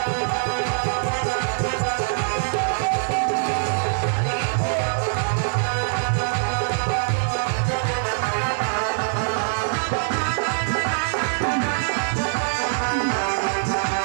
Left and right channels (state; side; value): silent; left; 63 dB below the other